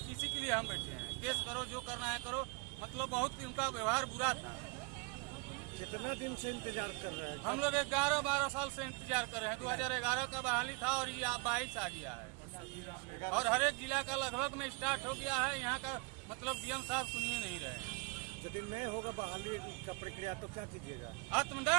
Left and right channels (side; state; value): left; quieter; 29.1 dB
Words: किसी के लिए हम बैठे हैं। केस करो, जो करना है करो। मतलब बहुत उनका व्यवहार बुरा था। कितना दिन से इंतजार कर रहे हैं? हम लोग 11-12 साल से इंतजार कर रहे हैं। 2011 का बहाली था और ये 22 आ गया है और हर एक जिला का लगभग में स्टार्ट हो गया है। यहाँ का मतलब डीएम साहब सुनिए नहीं रहे। यदि नहीं होगा बहाली का प्रक्रिया तो क्या कीजिएगा?